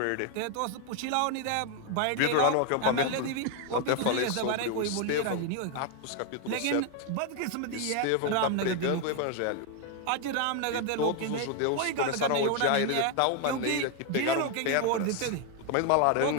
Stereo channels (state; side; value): different; both; correlation 0.01